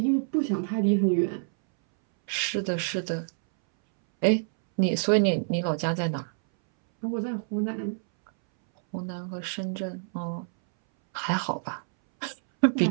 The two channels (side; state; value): left; silent; 60 dB below the other